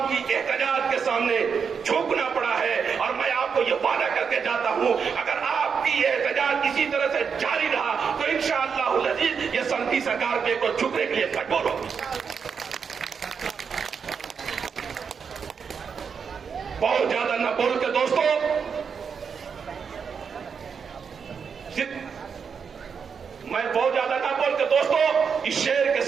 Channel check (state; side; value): quieter; left; 6.3 dB